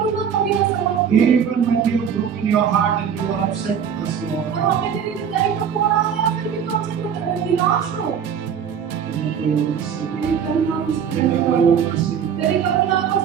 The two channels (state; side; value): quieter; left; 7.8 dB